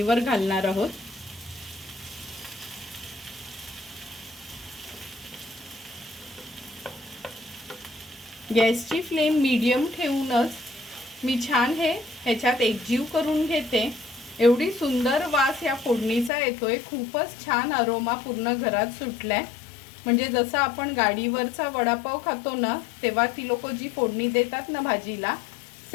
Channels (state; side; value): drops out; right; at 16.3 s